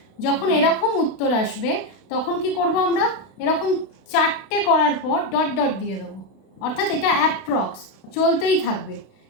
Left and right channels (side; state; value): right; late; 32 ms